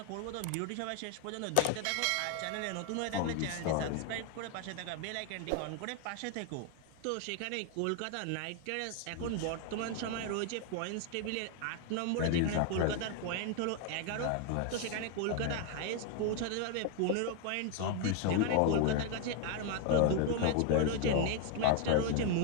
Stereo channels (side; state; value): both; different; correlation 0.00